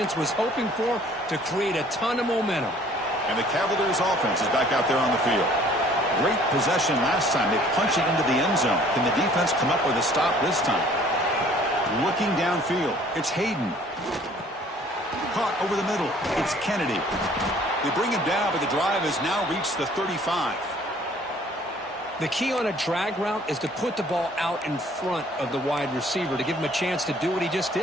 was hoping for to create a ton of momentum. And the Cavaliers' offense is back out there on the field. Great possession last time. They punch it into the end zone. Can the defense come up with a stop this time? Looking downfield. It's Hayden. Caught over the middle. It's Kennedy. They bring him down, but the drive has now reached the 35. The key on a drag route is to put the ball out in front of the wide receiver to give him a chance to do what he just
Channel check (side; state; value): both; normal; correlation 0.55